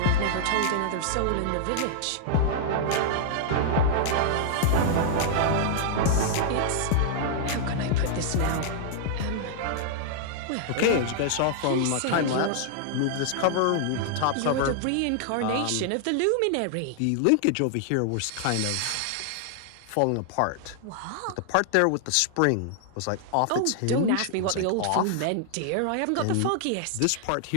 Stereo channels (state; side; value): different; both; correlation -0.01